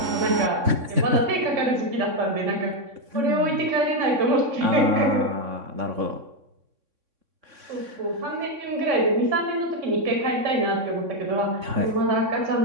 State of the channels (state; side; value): late; left; 3.6 ms